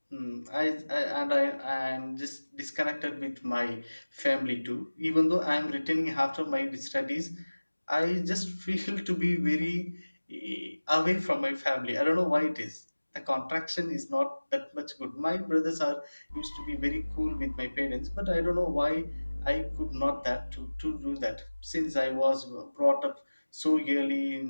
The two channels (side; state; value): both; inverted; correlation -1.00